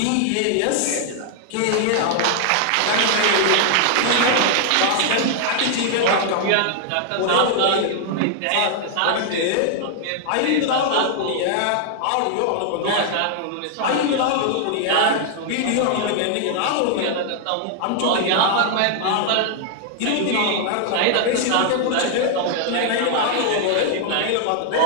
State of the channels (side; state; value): both; different; correlation 0.00